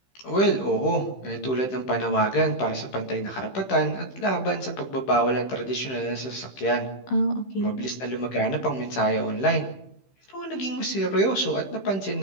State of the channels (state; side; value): late; right; 15 ms